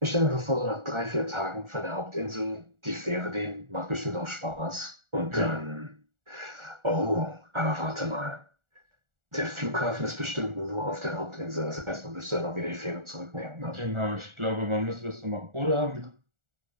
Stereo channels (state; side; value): late; left; 1.4 ms